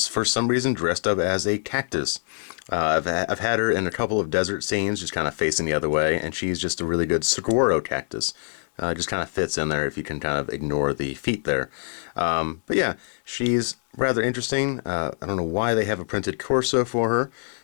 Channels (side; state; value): right; silent; 62 dB below the other